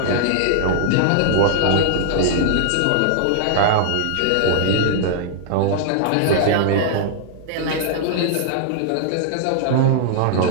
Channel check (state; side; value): different; both; correlation -0.01